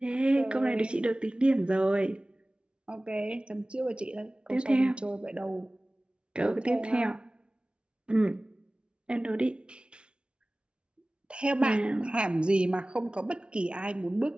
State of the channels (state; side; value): late; left; 0.057 ms